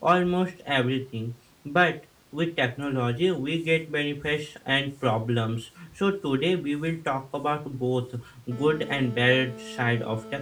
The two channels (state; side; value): identical; both; correlation 1.00